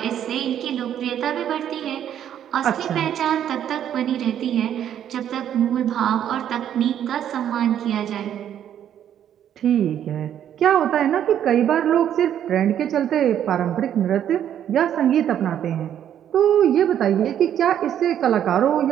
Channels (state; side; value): quieter; left; 10.0 dB